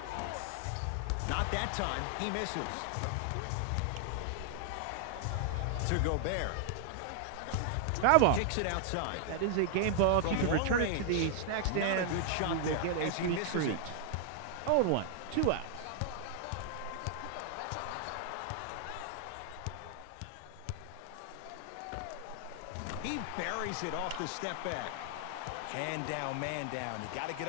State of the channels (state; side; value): different; both; correlation 0.00